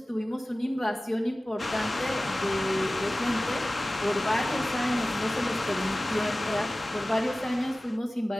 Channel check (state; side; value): normal; both; correlation 0.97